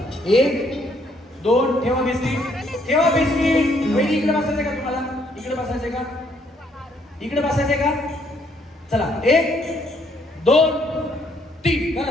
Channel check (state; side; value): normal; both; correlation 0.68